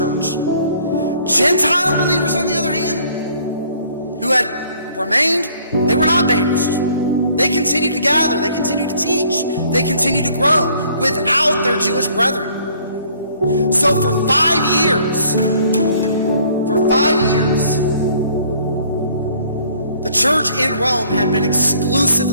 Gentile believers, on the other hand, who had remained, they were not banished. They continued to gather. They continued to teach. They continued to grow without their Jewish brethren. So for 5 years, the church in Rome had been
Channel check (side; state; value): both; inverted; correlation -0.59